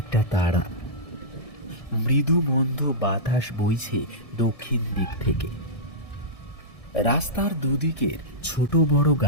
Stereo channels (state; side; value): late; right; 1.7 ms